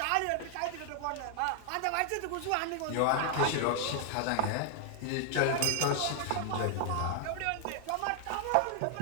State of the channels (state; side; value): different; both; correlation 0.00